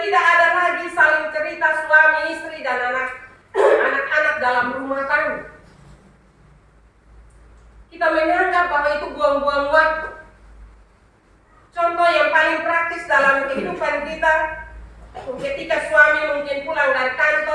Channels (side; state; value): both; identical; correlation 1.00